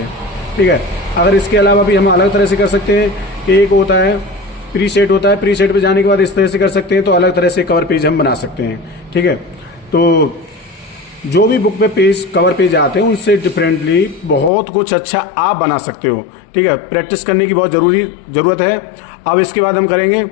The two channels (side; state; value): right; drops out; at 14.5 s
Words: ठीक है। अगर इसके अलावा भी हम अलग तरह से कर सकते हैं कि एक होता है प्री सेट होता है, प्री सेट पे जाने के बाद इस तरह से कर सकते हैं। तो अलग तरह से कवर पेज हम बना सकते हैं, ठीक है। तो जो भी बुक पे पेज कवर पेज आते हैं उनसे डिफरेंटली बहुत कुछ अच्छा आप बना सकते हो, ठीक है। प्रैक्टिस करने की बहुत ज़रूरत है। अब इसके बाद हम करेंगे,